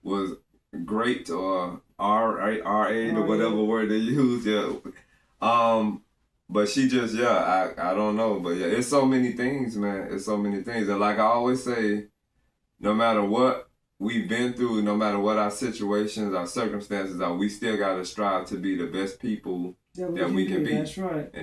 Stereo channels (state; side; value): identical; both; correlation 1.00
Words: was great or R8 or whatever word they use. Yeah. But she just, I don't know. But yeah, it's so many things, man. It's so many things. And like I always say, no matter what we've been through, no matter what our situations, our circumstances are, we still got to strive to be the best people that we can be. That's right.